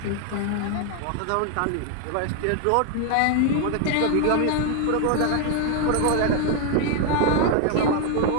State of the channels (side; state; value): both; different; correlation 0.00